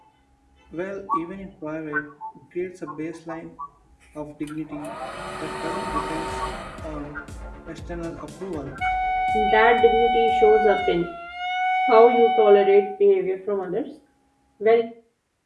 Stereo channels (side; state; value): both; identical; correlation 1.00